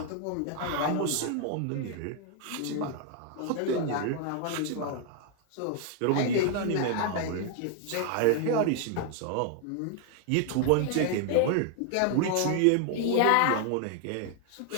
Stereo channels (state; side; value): different; both; correlation 0.00